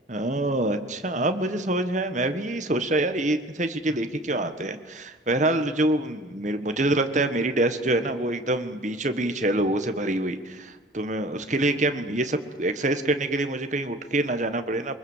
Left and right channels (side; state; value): both; normal; correlation 0.45